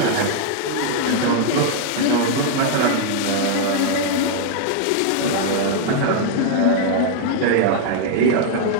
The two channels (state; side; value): different; both; correlation -0.01